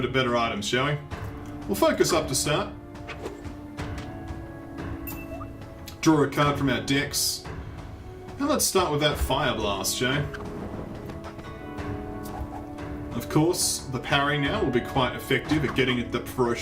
or better items, shall we? We'll focus up to start. Draw a card from our decks. And let's start with that Fire Blast, shall we? Of course, the parry now will be quite effective at getting the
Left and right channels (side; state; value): both; identical; correlation 1.00